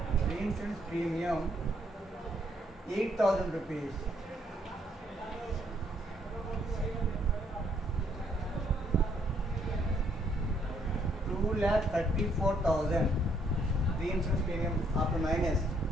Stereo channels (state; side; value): normal; both; correlation 0.70